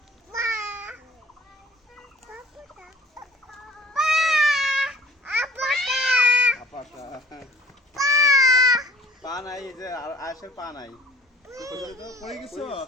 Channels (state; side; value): normal; both; correlation 0.49